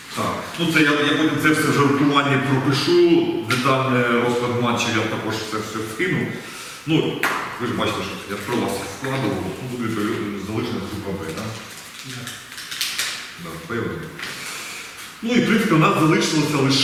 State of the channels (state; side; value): identical; both; correlation 1.00